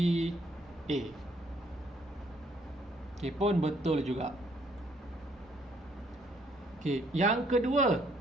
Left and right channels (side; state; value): both; normal; correlation 0.67